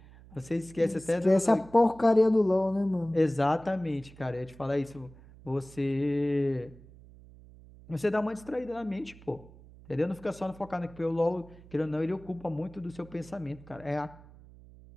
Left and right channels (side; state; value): right; noise; hum, 21 dB below the sound